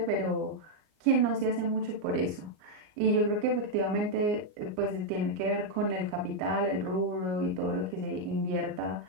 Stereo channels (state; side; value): late; left; 38 ms